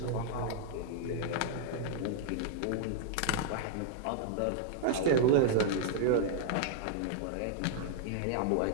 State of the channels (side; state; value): both; different; correlation -0.01